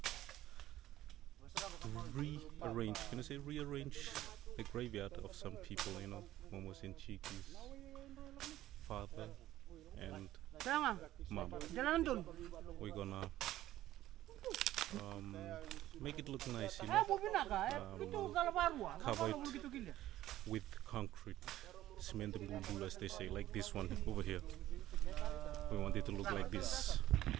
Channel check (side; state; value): left; quieter; 14.2 dB